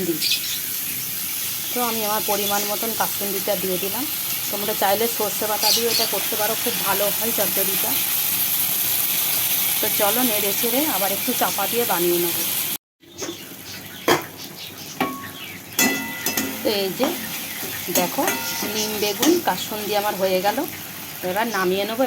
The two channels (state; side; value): identical; both; correlation 1.00